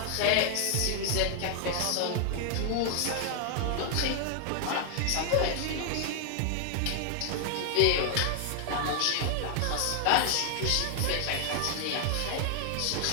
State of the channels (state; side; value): different; both; correlation 0.00